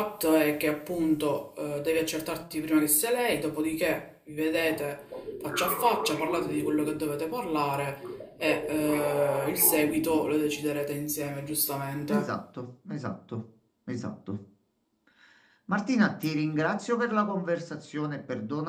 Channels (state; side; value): identical; both; correlation 1.00